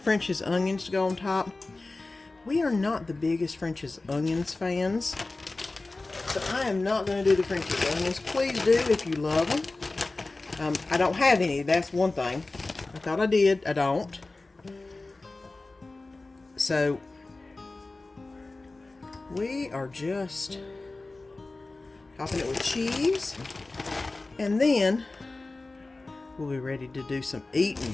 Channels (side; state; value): right; quieter; 3.3 dB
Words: French's onions to go on top. We are not the biggest French's onions fans, so I am not going to do the French's onions. Please do if you love them. I don't have any, that's one thing. I thought I did, I don't. So we are just topping it with cheese, and then we'll be ready to do some